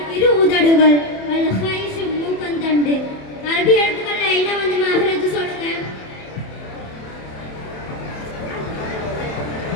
இரு உதடுகள், அல்-ஹைஷ் மூக்கந்தண்டு. அரபி எழுத்துக்கள் என்ன வந்து மஹ்ரஜ் சொல்லுங்க.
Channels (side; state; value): right; late; 27 ms